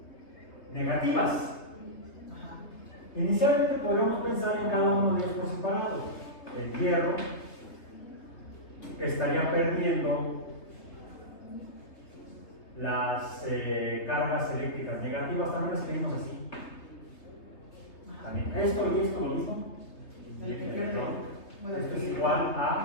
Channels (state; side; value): late; right; 3.3 ms